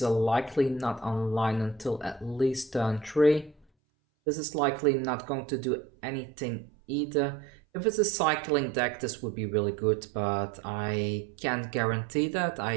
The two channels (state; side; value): drops out; left; at 3.7 s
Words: are likely not online until at least turn 3. This is likely not going to do anything either. If it's a cycling deck, this would be really good, but I can't guarantee that.